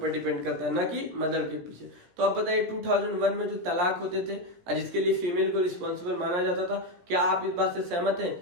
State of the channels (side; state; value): left; late; 17 ms